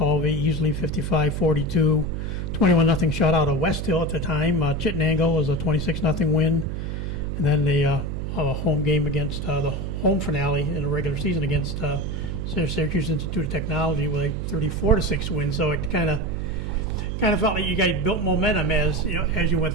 easily 55-42, 21-0 shutout of West Hill at the time. Chittenango was a 26-0 win, and then the home game against the home finale in the regular season against Syracuse Institute of Technology with a 34-6 win, so it kind of felt like you guys built momentum as you went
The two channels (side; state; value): right; noise; hum, 4 dB below the sound